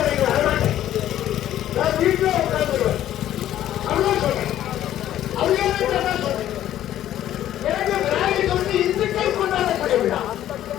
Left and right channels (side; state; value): right; quieter; 12.2 dB